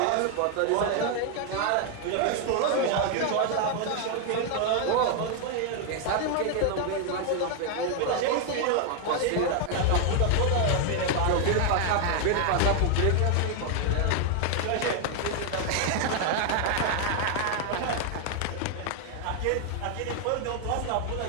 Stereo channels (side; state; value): both; different; correlation 0.00